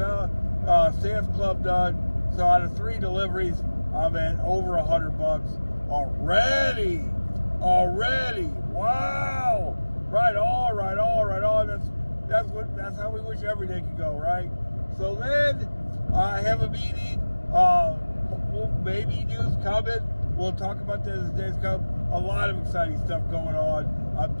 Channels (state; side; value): inverted; both; correlation -1.00